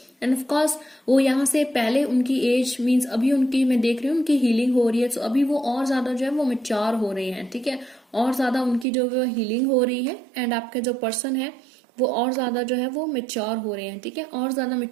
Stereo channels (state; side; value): drops out; left; at 8.8 s